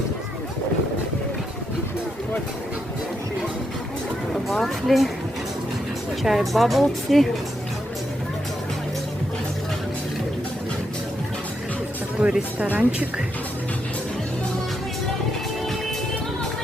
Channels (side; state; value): both; normal; correlation 0.81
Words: Вафли, чай баблти. Такой ресторанчик.